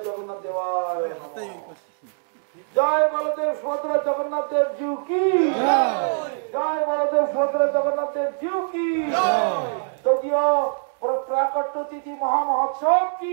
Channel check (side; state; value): left; silent; 63 dB below the other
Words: জগন্নাথ দেওয়ায় নমঃ। জয় বলদেব সুভদ্রা জগন্নাথ দেব জিউ কি জয়, বলদেব সুভদ্রা জগন্নাথ দেব জিউ কি তৃতীয় প্রাকট্য তিথি মহামহোৎসব